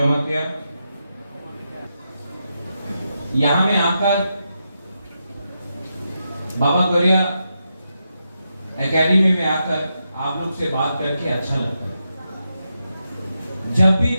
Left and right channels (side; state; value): both; inverted; correlation -0.86